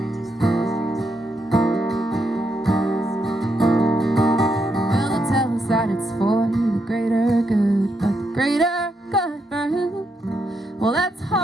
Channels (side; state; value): both; normal; correlation 0.80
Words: That it's for the greater good, but the greater good for who? Well, that's